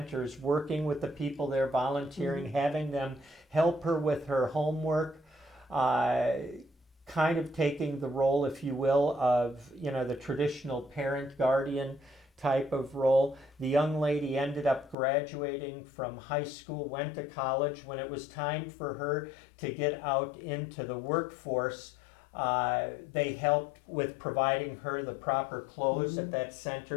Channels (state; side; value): drops out; right; at 15.0 s